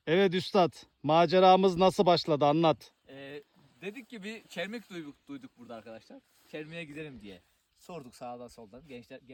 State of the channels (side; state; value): both; identical; correlation 1.00